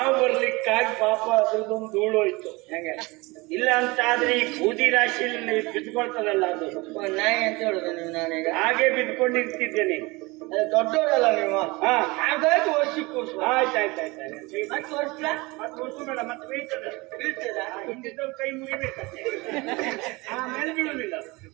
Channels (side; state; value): left; quieter; 24.0 dB